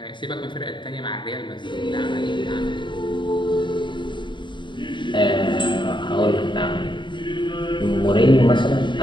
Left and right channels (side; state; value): right; late; 0.23 ms